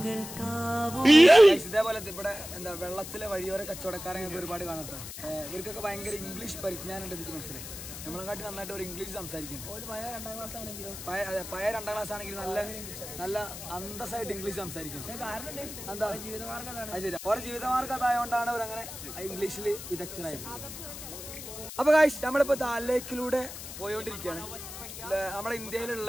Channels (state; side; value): noise; left; hiss, 10 dB below the sound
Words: ഇതേപോലെ ഇവിടെ എന്താ വെള്ളത്തിലെ വഴിയോര കച്ചവടക്കാരെ ഒരുപാട് കാണട്ടെ. ഇവർക്കൊക്കെ ഭയങ്കര ഇംഗ്ലീഷ് പരിജ്ഞാനം ഉണ്ട്. എനിക്ക് മനസ്സിലായി. നമ്മളെക്കാട്ടി നന്നായിട്ട് ഒരു ഇംഗ്ലീഷ് സംസാരിക്കും. പഴയ 2ാം ക്ലാസ് ആണെങ്കിലും നല്ല അന്തസ്സായിട്ട് ഇംഗ്ലീഷ് സംസാരിക്കും. എന്താ ജീവിതമാർഗ്ഗം ഓരോ ജീവിതമാർഗ്ഗം അതായതുകൊണ്ടാണ് അവരങ്ങനെ ഇംഗ്ലീഷിൽ വിദഗ്ധരായത്. അപ്പൊ ഗൈസ് നമ്മളിപ്പോ ദാൽ ലേക്കിലൂടെ പോയോണ്ടിരിക്കുകയാണ്. നമ്മുടെ